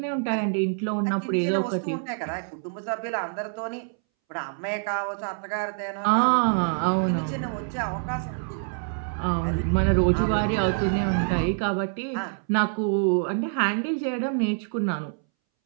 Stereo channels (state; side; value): silent; left; 61 dB below the other